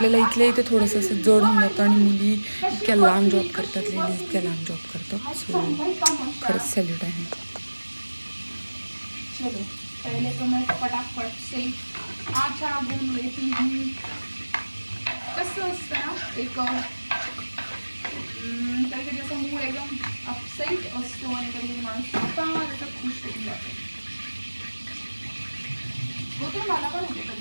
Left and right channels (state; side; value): inverted; both; correlation -1.00